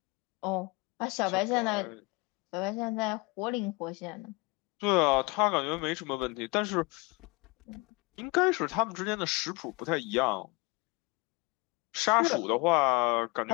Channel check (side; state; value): right; quieter; 26.3 dB